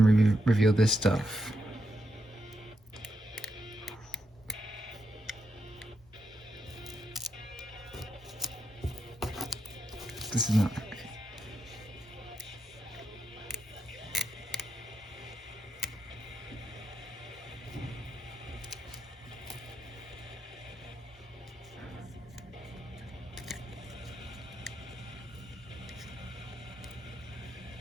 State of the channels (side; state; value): both; normal; correlation 0.83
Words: reveal this stuff. This is not.